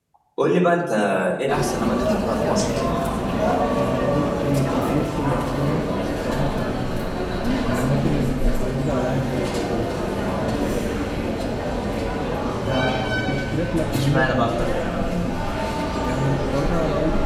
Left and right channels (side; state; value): both; identical; correlation 1.00